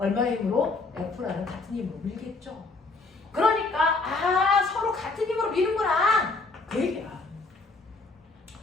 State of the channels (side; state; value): right; quieter; 3.7 dB